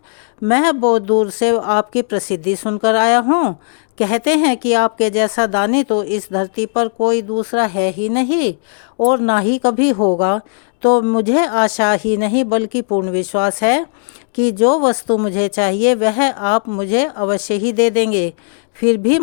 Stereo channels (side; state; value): right; silent; digital silence